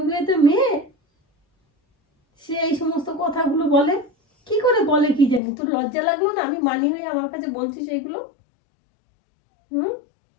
মেয়ে সে এই সমস্ত কথাগুলো বলে কি করে? বলে কি জানি, তোর লজ্জা লাগলো না? আমি মানি হয়ে আমার কাছে বলছিস এগুলো?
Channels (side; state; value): right; drops out; at 5.4 s